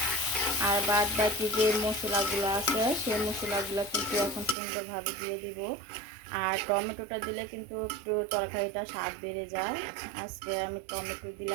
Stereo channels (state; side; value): drops out; left; at 4.5 s